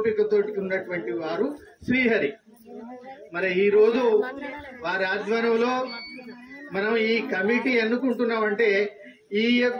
ఉన్నటువంటి వారు శ్రీహరి. మరి ఈ రోజు వారి ఆధ్వర్యంలో మనం ఈ కమిటీ ఎన్నుకుంటున్నామంటే ఈ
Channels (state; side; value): identical; both; correlation 1.00